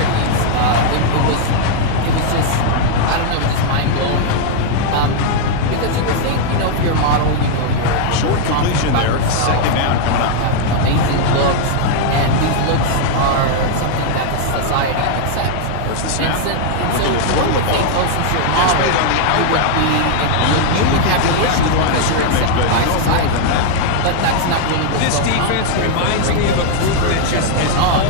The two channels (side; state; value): both; different; correlation 0.00